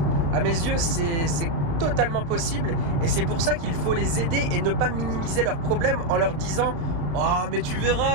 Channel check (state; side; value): late; left; 35 ms